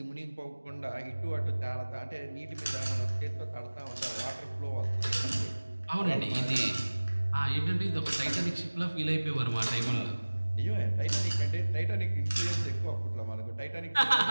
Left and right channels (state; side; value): inverted; both; correlation -1.00